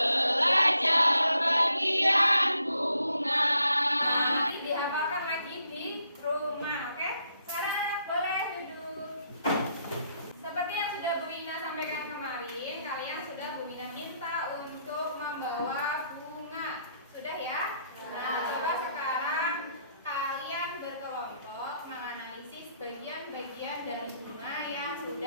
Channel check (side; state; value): both; inverted; correlation -0.74